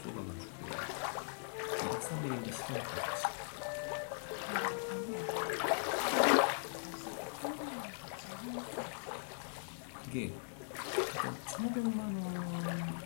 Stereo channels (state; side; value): silent; right; digital silence